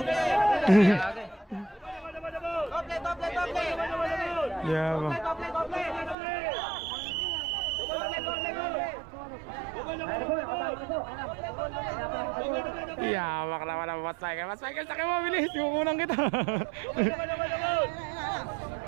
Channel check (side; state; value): left; drops out; at 6.2 s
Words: Yeah, iyamak naman ang Boss Michael. Boss Michael, sakay mo, bilis. Kukunan kita.